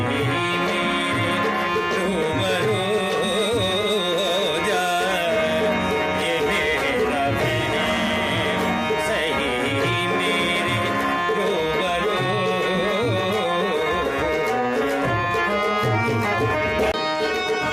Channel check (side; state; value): both; identical; correlation 1.00